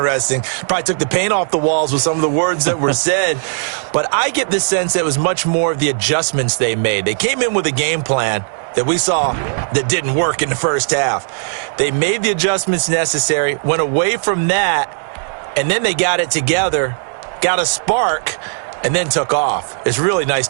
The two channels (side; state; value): left; silent; digital silence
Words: Probably took the paint off the walls with some of the words that were said. But I get the sense that it was much more of the adjustments they made. They came in with a game plan that we saw that didn't work in the first half. They made the adjustments necessary, went away from that, and then they got it together, got a spark, and then took off. It's really nice